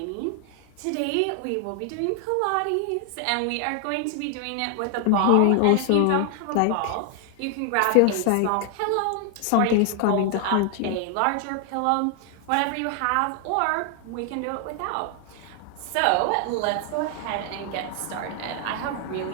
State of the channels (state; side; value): different; both; correlation 0.00